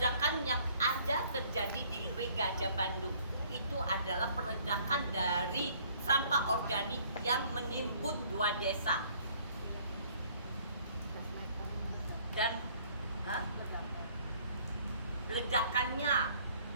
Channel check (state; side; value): inverted; both; correlation -0.59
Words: yang ada terjadi di Leweng Gajah Bandung itu adalah peledakan dari sampah organik yang menimbun 2 desa. Dan ledakannya